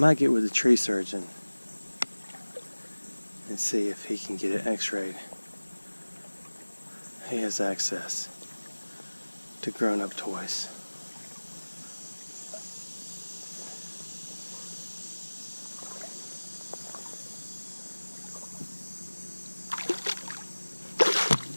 get with the tree surgeon and see if he can get it x-rayed. He has access to grown-up toys.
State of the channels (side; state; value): both; inverted; correlation -1.00